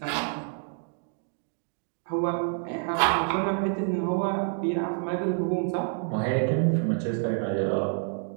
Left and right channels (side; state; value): left; silent; 57 dB below the other